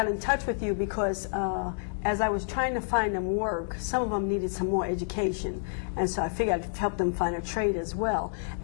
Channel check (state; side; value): silent; right; digital silence